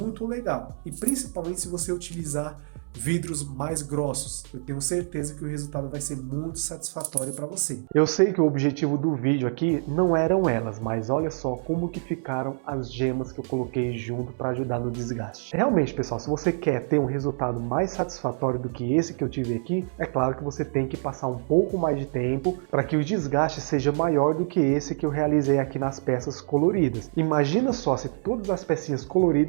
legal. E principalmente se você utilizar vidros mais grossos, eu tenho certeza que o resultado vai ser muito satisfatório para você. Eu sei que o objetivo do vídeo aqui não eram elas, mas olha só como que ficaram as gemas que eu coloquei junto para ajudar no desgaste. Realmente, pessoal, se você quer ter um resultado mais satisfatório do que esse que eu tive aqui, é claro que você tem que passar um pouco mais de tempo para que o desgaste seja maior do que esse que eu realizei aqui nas peças coloridas. Imagina só se todas as pecinhas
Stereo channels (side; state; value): left; silent; 61 dB below the other